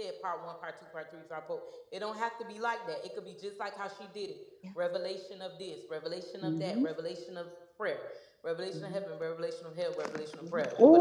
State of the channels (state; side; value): identical; both; correlation 1.00